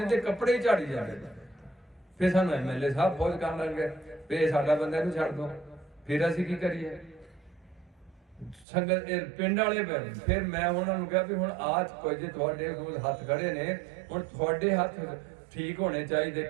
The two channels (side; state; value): left; drops out; at 8.7 s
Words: ਤੇ ਕੱਪੜੇ ਝਾੜੀ ਜਾਂਦੇ, ਫਿਰ ਸਾਨੂੰ ਐਮਐਲਏ ਸਾਹਿਬ ਫੋਨ ਕਰਨ ਲੱਗੇ ਵੀ ਸਾਡਾ ਬੰਦਾ ਨੂੰ ਛੱਡ ਦੋ, ਫਿਰ ਅਸੀਂ ਕੀ ਕਰੀਏ? ਸੰਗਤ ਪਿੰਡ ਵਾਲੇ ਫਿਰ ਮੈਂ ਉਹਨਾਂ ਨੂੰ ਕਿਹਾ ਵੀ ਹੁਣ ਆਜ ਕੋਈ ਜੇ ਤੁਹਾਡੇ ਕੋਲ ਹੱਥ ਖੜੇ ਨੇ, ਹੁਣ ਤੁਹਾਡੇ ਹੱਥ ਠੀਕ ਹੋਣੇ ਚਾਹੀਦੇ।